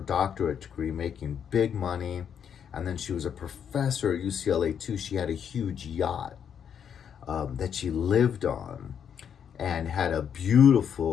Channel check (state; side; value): quieter; right; 8.1 dB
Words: degree, making big money. And then she was a professor at UCLA too. She had a huge yacht that she lived on, and had a